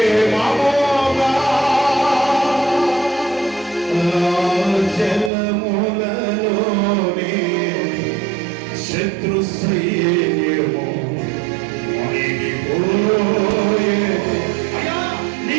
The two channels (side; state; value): left; drops out; at 5.3 s